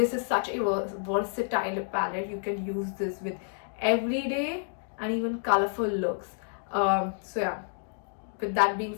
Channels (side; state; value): right; silent; digital silence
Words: is such a versatile palette. You can use this with everyday and even colorful looks. So yeah, with that being